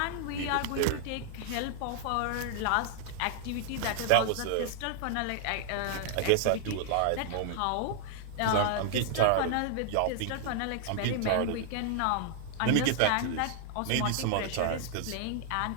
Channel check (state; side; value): different; both; correlation -0.01